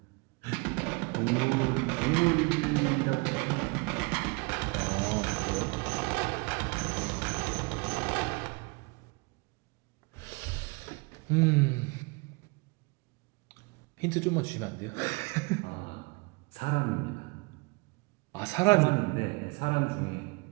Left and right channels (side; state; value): left; quieter; 28.6 dB